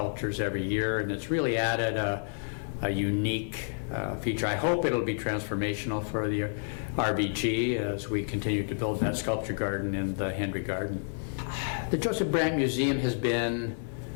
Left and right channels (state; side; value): silent; right; digital silence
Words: every year, and it's really added a unique feature. I hope it'll be transformational for the RBG as we continue to build that sculpture garden in the Henry Garden. The Joseph Brant Museum has been